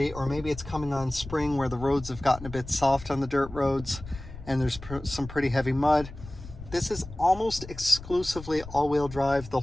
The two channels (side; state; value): left; noise; rumble, 14 dB below the sound